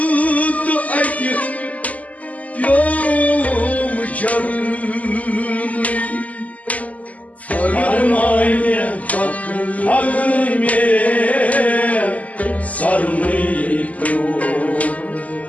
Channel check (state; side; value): late; right; 0.073 ms